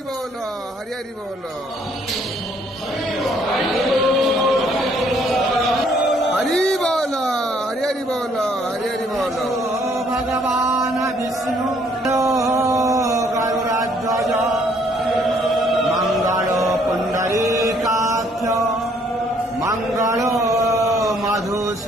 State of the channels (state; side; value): normal; both; correlation 0.65